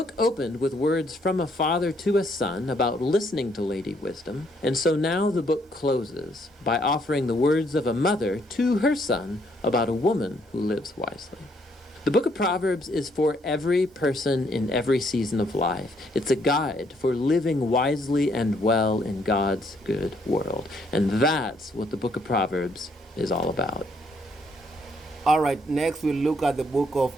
opened with words from a father to a son about listening to Lady Wisdom, and so now the book closes by offering the words of a mother to her son about a woman who lives wisely. The book of Proverbs is for every person in every season of life. It's a guide for living wisely and well in God's good world. And that's what the book of Proverbs is all about. All right, next we'll look at the book of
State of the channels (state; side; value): normal; both; correlation 0.70